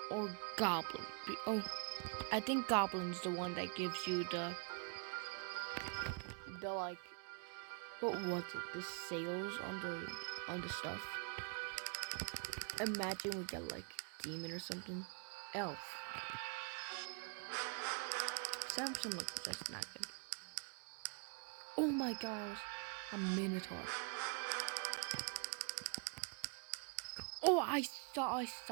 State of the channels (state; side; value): quieter; left; 39.8 dB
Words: or goblin. Oh, I think goblin's the one that gives you the like. What was it? The sales on the stuff. Imagine we get like demon or something. Elf. 7% look, that's not good. Oh my god, I was a minotaur. Oh, I